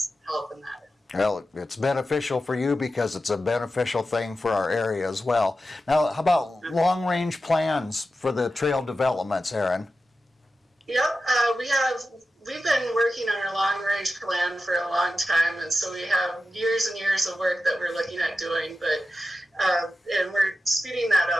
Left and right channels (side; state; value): both; normal; correlation 0.92